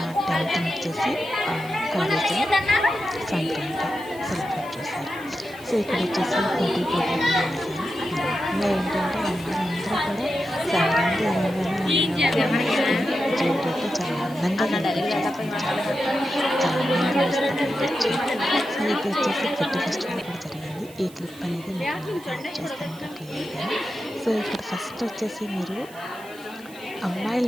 10th వచ్చేసి కాలేజీలో సంక్రాంతి సెలబ్రేట్ చేశారు. సో ఇక్కడ వచ్చేసి పోటీ చేశారు. ఇంకా ఏంటంటే అందరూ కూడా సంక్రాంతి జ్యువెలరీతో చాలా అందంగా చాలా అందంగా సో ఇది వచ్చేసి ఫుడ్ ఫెస్టివల్ కూడా జరిగింది. ఈ క్లిప్ అనేది మీకు చేస్తాను క్లియర్గా. సో ఇక్కడ ఫస్ట్ వచ్చేసి మీరు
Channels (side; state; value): right; noise; hiss, 22 dB below the sound